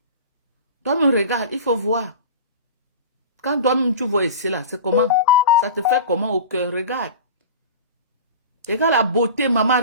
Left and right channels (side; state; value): both; inverted; correlation -0.33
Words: Toi-même, regarde, il faut voir. Quand toi-même, tu vois ici, là, c'est comment? Ça te fait comment au cœur? Regarde. Regarde la beauté, maman.